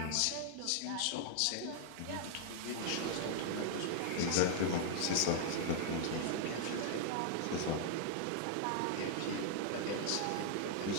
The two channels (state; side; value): different; both; correlation 0.00